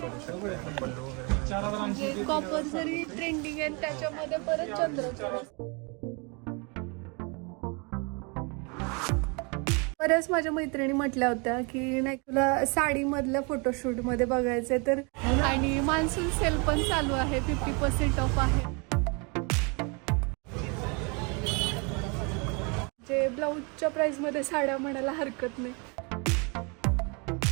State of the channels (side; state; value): left; quieter; 32.1 dB